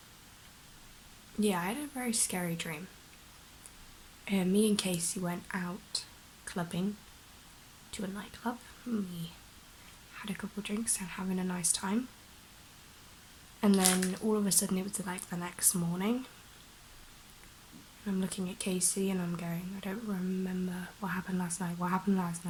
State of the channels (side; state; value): both; identical; correlation 1.00